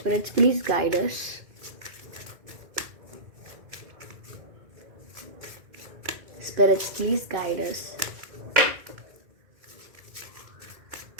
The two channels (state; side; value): late; left; 2.1 ms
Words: please guide us. Spirits, please guide us.